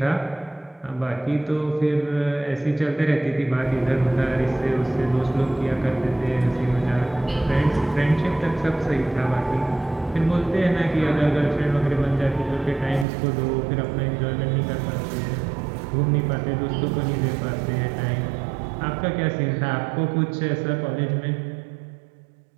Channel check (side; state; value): left; drops out; at 13.1 s